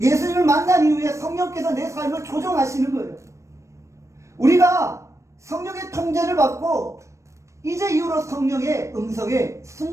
만난 이후에 성령께서 내 삶을 조정하시는 거예요. 우리가 성령의 통제를 받고 이제 이후로 성령의 음성에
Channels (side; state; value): left; late; 0.15 ms